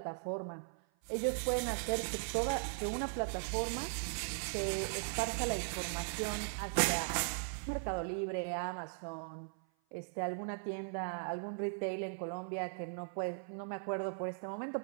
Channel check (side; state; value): left; silent; 52 dB below the other